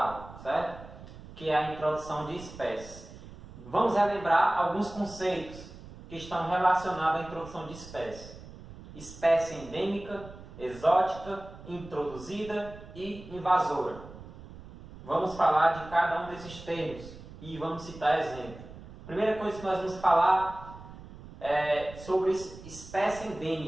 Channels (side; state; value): right; noise; rumble, 16 dB below the sound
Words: certo? Que é a introdução de espécies. Vamos relembrar alguns conceitos que estão relacionados à introdução de espécies. Espécie endêmica, exótica, introduzida e invasora. Vamos falar de cada um desses termos e vamos citar exemplos. Primeira coisa que nós vamos falar é sobre espécie